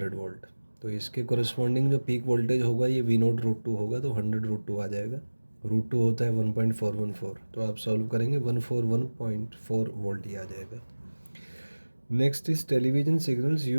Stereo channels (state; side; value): inverted; both; correlation -1.00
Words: वोल्ट, तो इसके कोरस्पॉन्डिंग जो पीक वोल्टेज होगा ये वी नोट रूट टू होगा, तो 100 रूट टू आ जाएगा। रूट टू होता है 1.414, तो आप सॉल्व करेंगे 141.4 वोल्ट ही आ जाएगा। Next is television signals